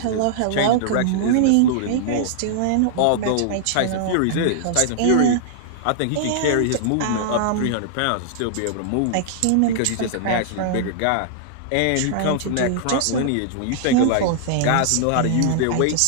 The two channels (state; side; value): different; both; correlation -0.01